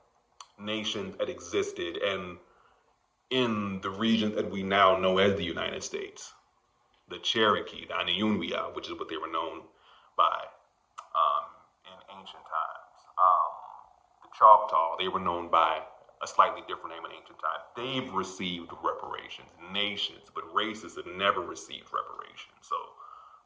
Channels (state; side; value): identical; both; correlation 1.00